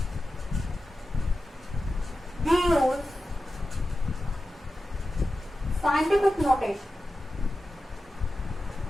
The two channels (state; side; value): normal; both; correlation 0.93